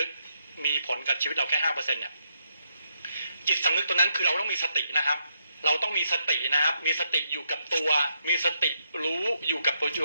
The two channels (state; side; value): inverted; both; correlation -0.78